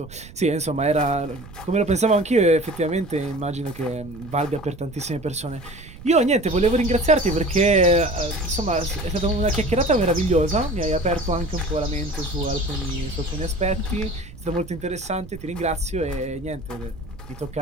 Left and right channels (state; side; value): noise; right; rumble, 18 dB below the sound